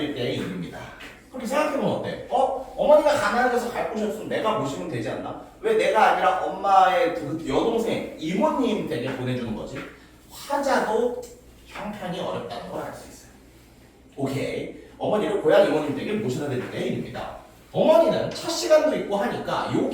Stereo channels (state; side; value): identical; both; correlation 1.00